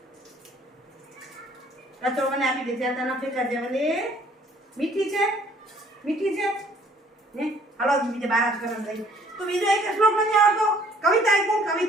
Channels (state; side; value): normal; both; correlation 0.59